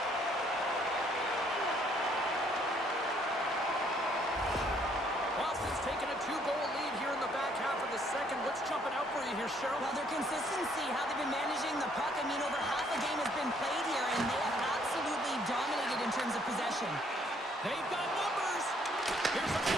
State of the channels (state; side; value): normal; both; correlation 0.65